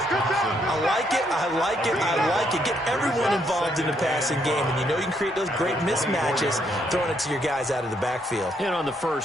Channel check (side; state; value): both; normal; correlation 0.73